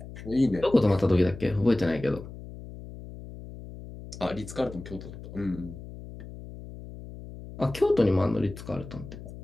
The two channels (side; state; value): left; noise; hum, 13 dB below the sound